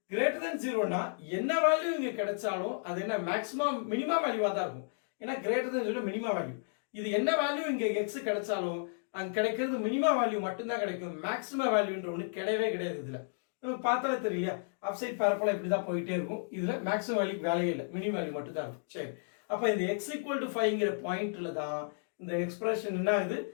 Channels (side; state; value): right; silent; digital silence